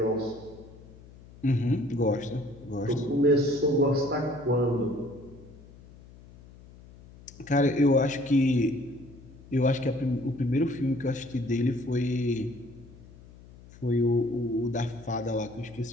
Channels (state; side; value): noise; left; hum, 21 dB below the sound